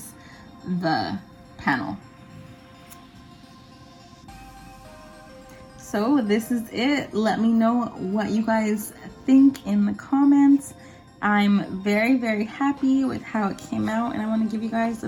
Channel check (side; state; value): both; identical; correlation 1.00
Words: the panel. So this is it. Let me know what you guys think in the comments. I'm very, very happy with how it came out, and I want to give you guys a